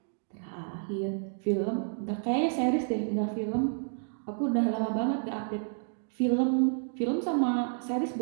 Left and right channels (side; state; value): left; silent; digital silence